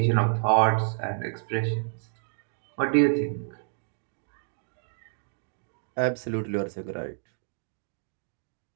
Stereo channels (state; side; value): silent; left; 58 dB below the other